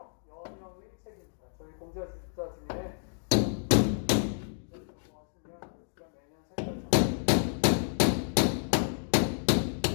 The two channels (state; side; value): silent; right; digital silence